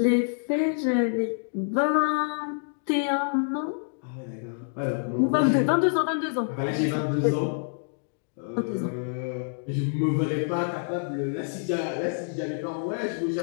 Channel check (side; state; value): right; silent; digital silence